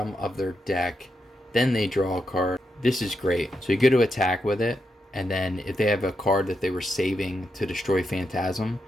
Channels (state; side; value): normal; both; correlation 0.84